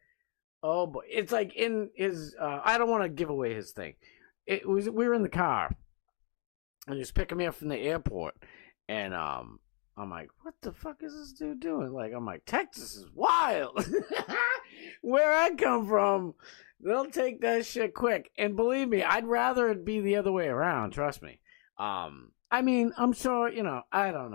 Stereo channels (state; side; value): quieter; right; 37.7 dB